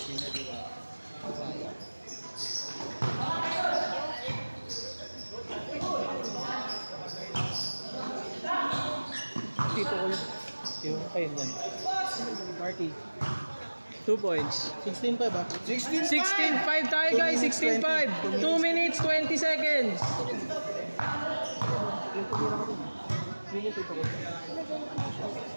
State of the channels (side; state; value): both; inverted; correlation -1.00